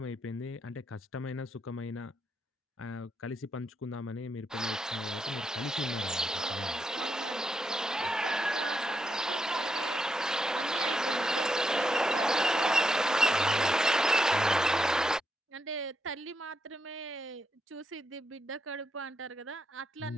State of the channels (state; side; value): normal; both; correlation 0.82